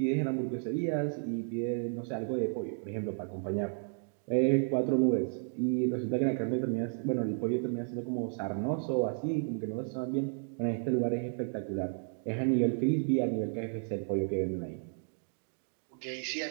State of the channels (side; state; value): left; silent; 56 dB below the other